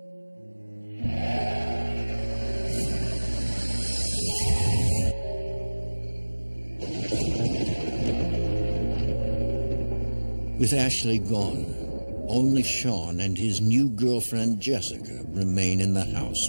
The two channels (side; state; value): both; inverted; correlation -1.00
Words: With Ashley gone, only Sean and his new girlfriend Jessica remain in the house